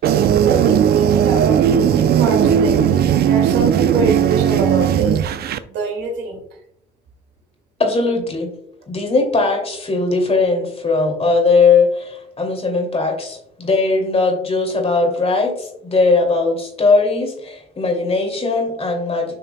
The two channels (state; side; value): normal; both; correlation 0.42